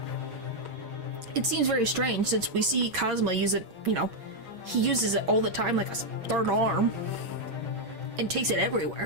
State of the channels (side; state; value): left; late; 6.3 ms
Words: It seems very strange, since we see Kazuma use it, you know, he uses it all the time like a third arm, and takes it